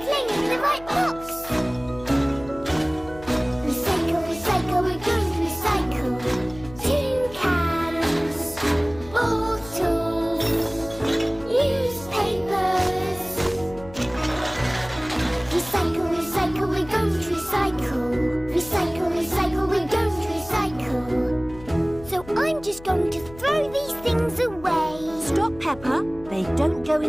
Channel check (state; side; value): noise; left; hum, 18 dB below the sound